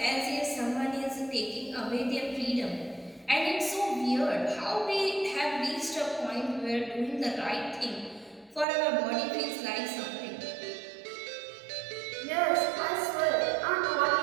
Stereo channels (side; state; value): left; drops out; at 8.7 s